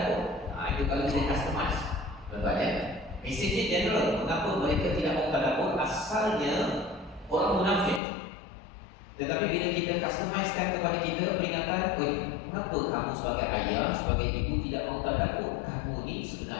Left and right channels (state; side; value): drops out; right; at 8.0 s